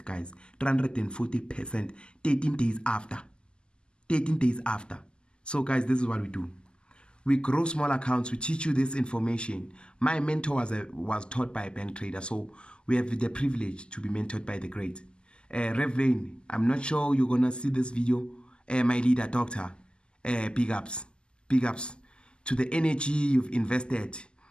guys. 340%. 13 days after. 13 days after. So guys, this is what we do. We grow small accounts. We teach you this information. My mentor was taught by a bank trader, so we have the privilege to be mentored by the great Rev Lane. I'm not sure you're gonna see this video. My leader, doctor. Big ups to the energy you've invested,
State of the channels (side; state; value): right; late; 0.049 ms